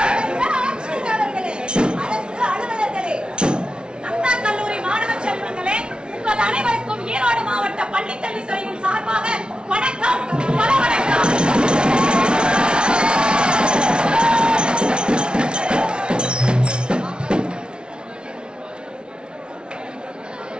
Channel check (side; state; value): left; late; 0.056 ms